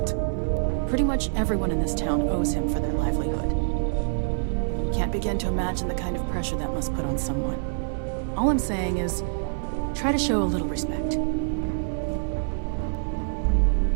Pretty much everyone in this town owes him for their livelihood. Can't begin to imagine the kind of pressure that must put on someone. All I'm saying is, try to show a little respect.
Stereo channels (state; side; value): silent; left; 61 dB below the other